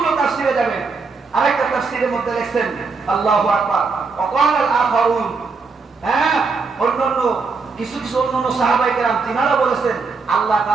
তাফসীরে যাবেন আরেকটা তাফসীরের মধ্যে লিখছেন আল্লাহু আকবার ওয়া ক্বালা আল আখারুন অন্যান্য কিছু অন্যান্য সাহাবায়ে কেরাম তিনারা বলেছেন আল্লাহ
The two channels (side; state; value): left; quieter; 4.5 dB